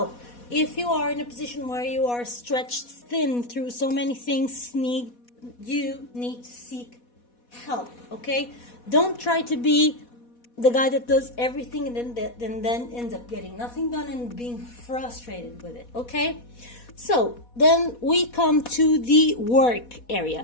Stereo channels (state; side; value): late; right; 4.1 ms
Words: If you are in a position where you are stretched thin through so many things, you need to seek help. Okay, don't try to be the guy that does everything and then ends up getting nothing done and being frustrated with it. Okay, so then we come to the work